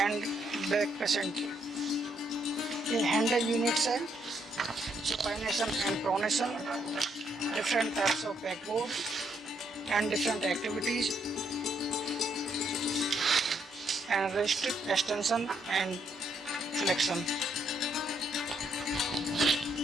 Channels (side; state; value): both; normal; correlation 0.73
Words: बैक पेशेंट, ये हैंड यूनिट्स है, supination and pronation, different types of backboard and different activities, and wrist extension and flexion.